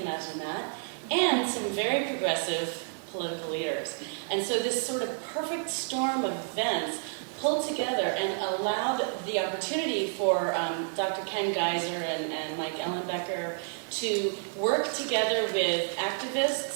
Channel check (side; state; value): left; silent; 58 dB below the other